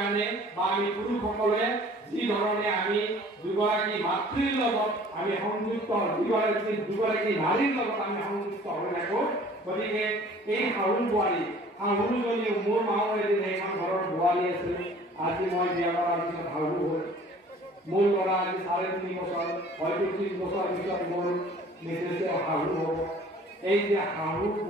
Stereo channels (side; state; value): both; normal; correlation 0.50